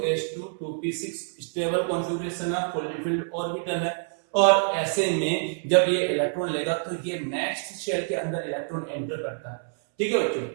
2p6 स्टेबल कॉन्फ़िगरेशन है, फुल्ली फिल्ड ऑर्बिटल है, और ऐसे में जब ये इलेक्ट्रॉन लेगा तो ये नेक्स्ट शेल के अंदर इलेक्ट्रॉन एंटर करता है, ठीक है बच्चों,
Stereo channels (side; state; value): left; silent; 60 dB below the other